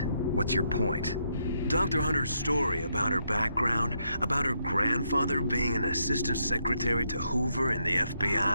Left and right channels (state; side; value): inverted; both; correlation -0.77